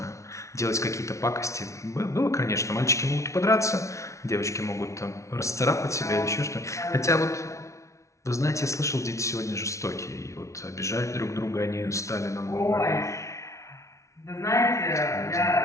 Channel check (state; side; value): late; right; 0.14 ms